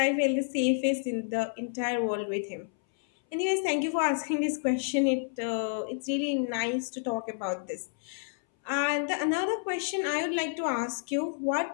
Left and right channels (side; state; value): right; silent; 58 dB below the other